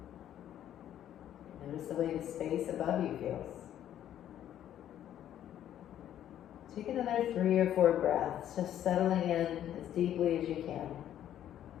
Notice the way the space above you feels. Take another 3 or 4 breaths, just settling in as deeply as you can.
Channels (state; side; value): quieter; right; 11.1 dB